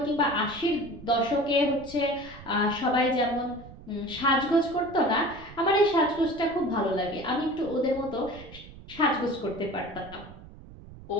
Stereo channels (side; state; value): right; noise; rumble, 18 dB below the sound